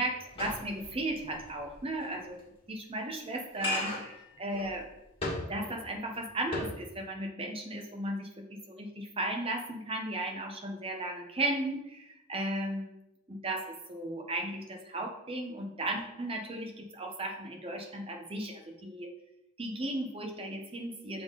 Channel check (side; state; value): both; normal; correlation 0.24